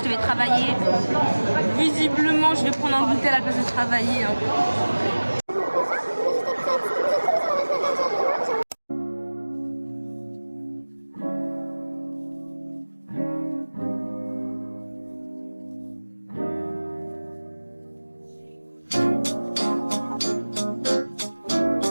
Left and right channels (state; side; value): inverted; both; correlation -1.00